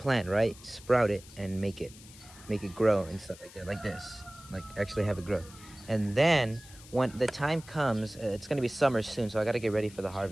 right? Sprout it and make it grow and stuff like that, like this, like actually have it grow. And then when the time comes, it's gonna be summer soon, so I gotta get ready for the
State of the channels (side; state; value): left; noise; hiss, 20 dB below the sound